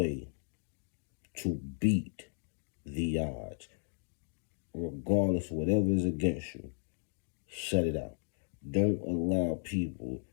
to beat the odds, regardless of whatever is against you. Shut it out. Don't allow people,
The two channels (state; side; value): silent; right; digital silence